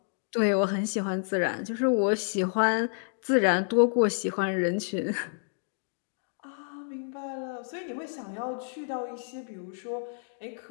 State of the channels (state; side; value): silent; right; digital silence